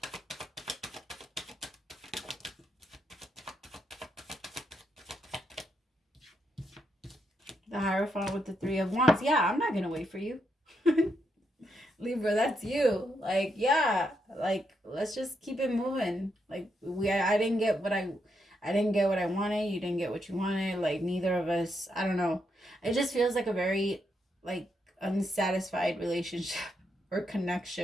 The Hierophant with the Three of Wands. Yeah, I'm not going to wait for you. Libra, that's you. Like, yeah. Like, let's just keep it moving. Like, I didn't get what I wanted. You didn't get what you wanted. Like, neither of us, I don't know. It just feels like a very, like, unsatisfied relationship or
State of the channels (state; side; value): normal; both; correlation 0.80